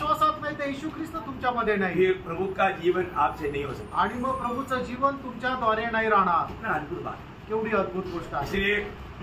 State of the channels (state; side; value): identical; both; correlation 1.00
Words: नाही तर येशू ख्रिस्त तुमच्यामध्ये नाही. ये प्रभु का जीवन आपसे नहीं हो सकता। आणि मग प्रभूचं जीवन तुमच्याद्वारे नाही राहणार. कितना अद्भुत बात, केवढी अद्भुत गोष्ट आहे. इसलिए